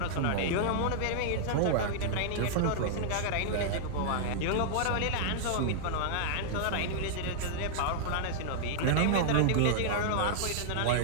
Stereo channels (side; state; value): both; different; correlation -0.01